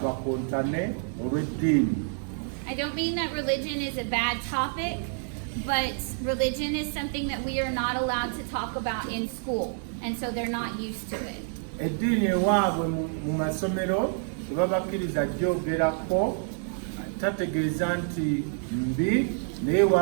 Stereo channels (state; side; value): silent; left; 58 dB below the other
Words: bakontane olw'eddiini. I don't mean that religion is a bad topic, but religion is something that we are not allowed to talk about in school, and so they're not used to it. Eddiini ewaabwe mu masomero tebabakkiriza gyogerako, tategeeza nti mbi, naye